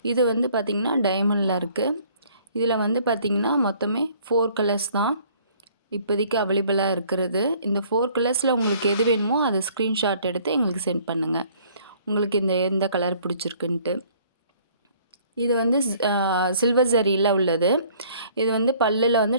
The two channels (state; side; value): inverted; both; correlation -0.57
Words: இது வந்து பார்த்திங்கன்னா டைமண்டில் இருக்குது. இதில் வந்து பார்த்திங்கன்னா மொத்தமே 4 கலர்ஸ் தான் இப்போதைக்கு அவைலபிளாக இருக்கிறது. இந்த 4 கலர்ஸில் உங்களுக்கு எது வேணுமோ அதை ஸ்க்ரீன்ஷாட் எடுத்து எங்களுக்கு சென்ட் பண்ணுங்கள். உங்களுக்கு எந்த கலர் பிடிச்சிருக்குன்ட்டு. இது வந்து சில்வர் ஜரியில் உள்ளது. இது வந்து பல்லில்